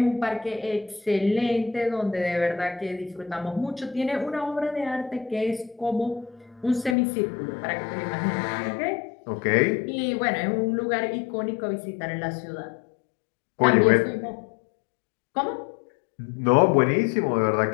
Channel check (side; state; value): right; drops out; at 7.0 s